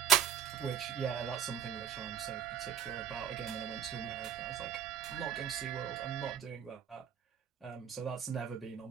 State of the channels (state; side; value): quieter; left; 8.3 dB